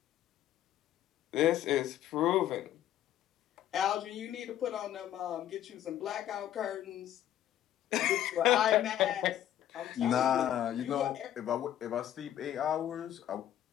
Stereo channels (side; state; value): right; quieter; 11.6 dB